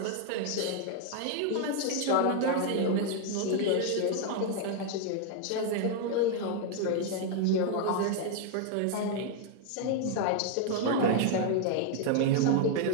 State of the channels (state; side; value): different; both; correlation 0.00